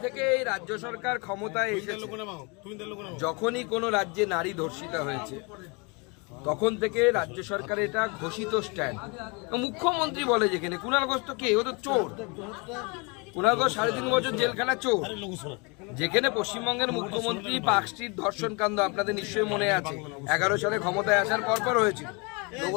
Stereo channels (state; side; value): quieter; right; 30.6 dB